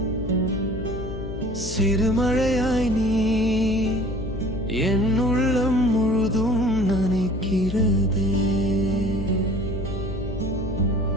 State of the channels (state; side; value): noise; left; hum, 8 dB below the sound